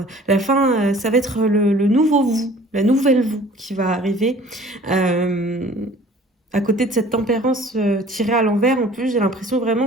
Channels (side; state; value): both; normal; correlation 0.49